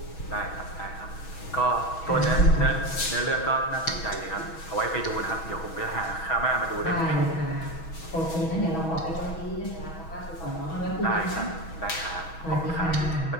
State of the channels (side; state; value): right; late; 6.2 ms